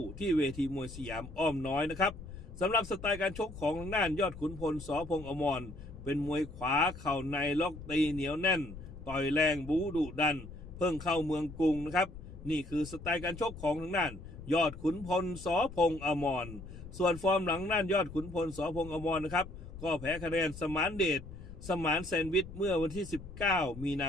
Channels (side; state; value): left; noise; rumble, 13 dB below the sound